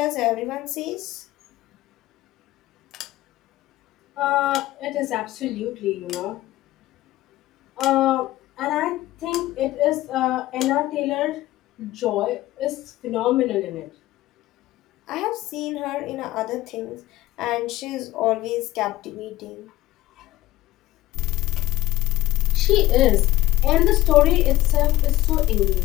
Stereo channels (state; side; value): quieter; right; 16.5 dB